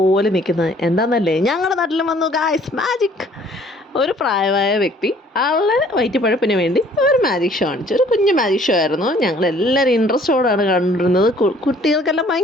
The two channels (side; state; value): both; normal; correlation 0.57